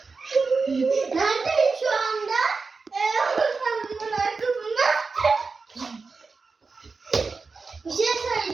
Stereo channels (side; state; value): left; quieter; 4.4 dB